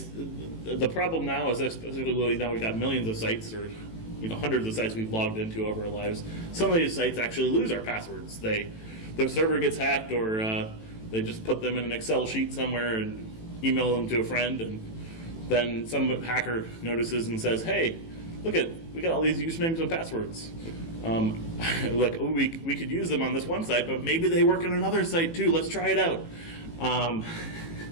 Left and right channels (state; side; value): late; right; 18 ms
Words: the problem now is, especially now we've got millions of sites, or hundreds of sites we've logged into over our lives. Some of these sites actually lose our passwords. Their server gets hacked, or they just put them in an Excel sheet somewhere and email them to a friend, and then some hacker notices and says, "Hey, we got all these usernames and passwords. Like, oh, we could use them on this one site, but maybe they work on another site too. Let's try it out."